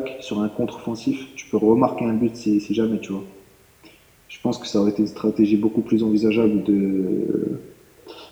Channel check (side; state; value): both; identical; correlation 1.00